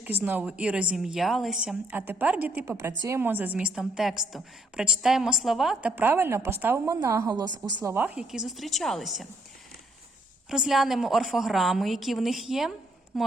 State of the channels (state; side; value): normal; both; correlation 0.70